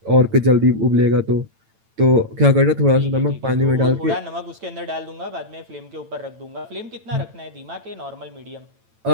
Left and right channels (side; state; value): left; late; 9.0 ms